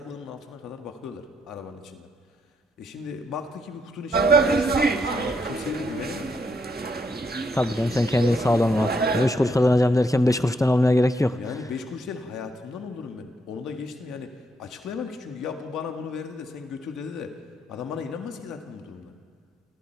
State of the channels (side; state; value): both; normal; correlation 0.76